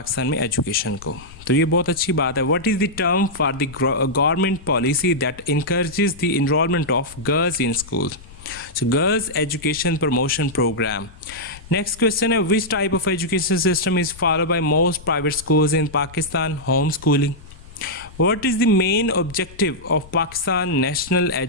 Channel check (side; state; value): left; noise; rumble, 19 dB below the sound